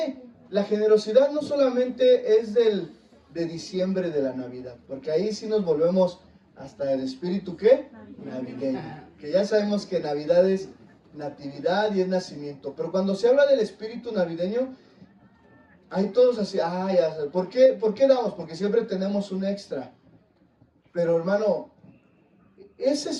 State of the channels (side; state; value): both; identical; correlation 1.00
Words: la generosidad, no solamente es de diciembre de la Navidad, porque ahí sí nos volvemos hasta el espíritu, ¿qué? Navideño. Que ya sabemos que Navidad es natividad y es nacimiento. Pero cuando se habla del espíritu navideño, hay todos así, ya sé. ¿Por qué damos? Porque siempre tenemos un extra. Pero hermano, ese